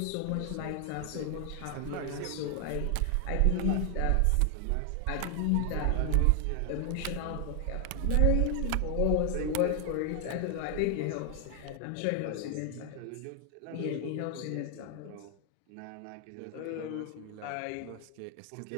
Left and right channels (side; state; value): both; different; correlation 0.00